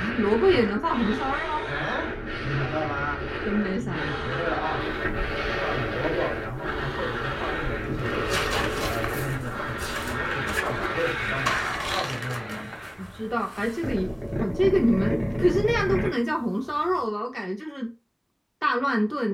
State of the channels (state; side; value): identical; both; correlation 1.00